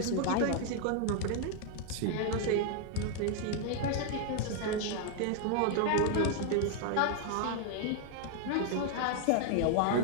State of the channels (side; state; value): both; different; correlation 0.00